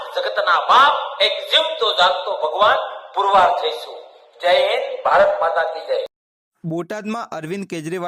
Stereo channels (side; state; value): both; identical; correlation 1.00